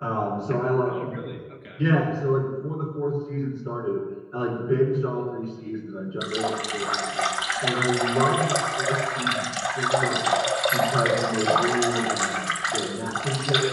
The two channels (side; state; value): both; identical; correlation 1.00